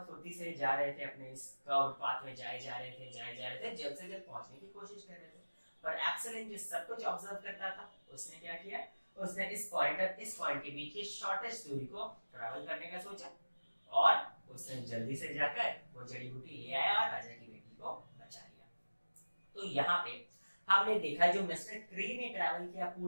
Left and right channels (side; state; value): both; inverted; correlation -1.00